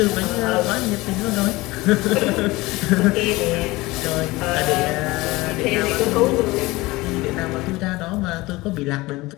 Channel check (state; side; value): quieter; right; 20.8 dB